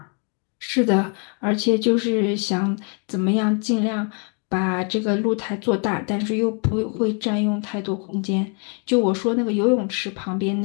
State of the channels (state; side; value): quieter; right; 37.8 dB